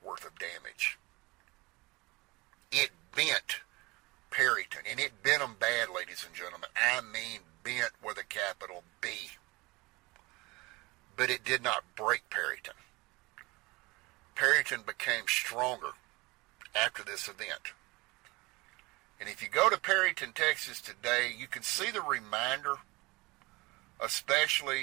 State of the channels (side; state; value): left; quieter; 23.3 dB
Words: worth of damage. It bent Perryton, and it bent them bad, ladies and gentlemen. I mean bent with a capital B. But it did not break Perryton. Perryton became stronger after this event. And if you go to Perryton, Texas today, you can see the reminder,